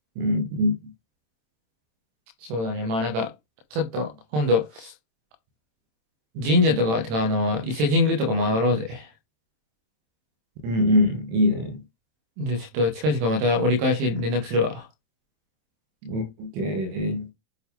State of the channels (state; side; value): late; left; 27 ms